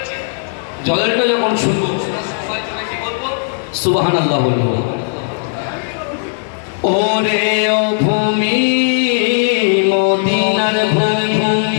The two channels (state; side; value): silent; right; 69 dB below the other